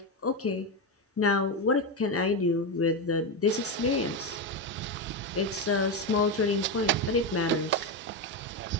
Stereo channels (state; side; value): normal; both; correlation 0.11